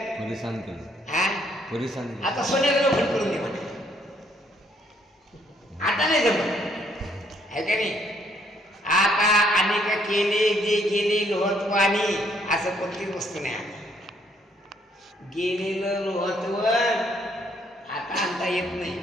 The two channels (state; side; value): normal; both; correlation 0.68